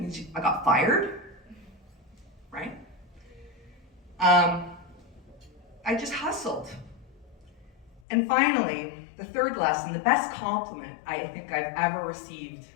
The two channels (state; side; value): drops out; right; at 8.0 s